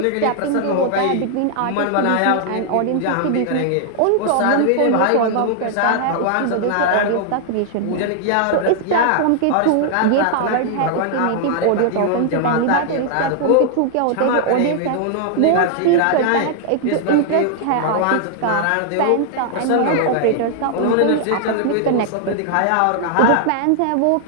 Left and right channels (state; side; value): different; both; correlation -0.01